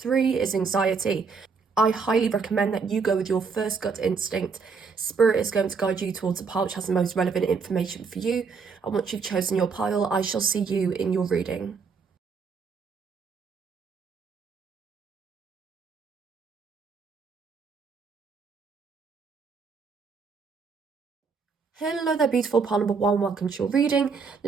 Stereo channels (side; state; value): left; quieter; 5.2 dB